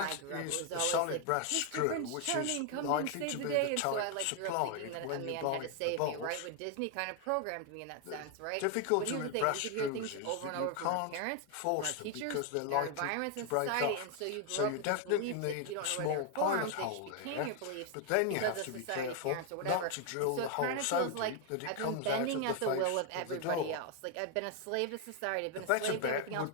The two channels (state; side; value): different; both; correlation 0.01